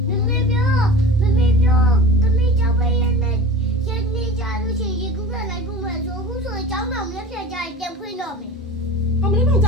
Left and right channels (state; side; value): normal; both; correlation 0.36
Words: မမေပြောတမီးကြောက်ပဲရနေရနေကြလို့ရှိရင်ကူကလိုက်ဖို့မယ်ဆိုအခုဆိုရင်ကျောင်းတော်မြက်ဖြတ်ကြရင်ပြန်ဖွင့်တော့မယ် အမလေးမောင်က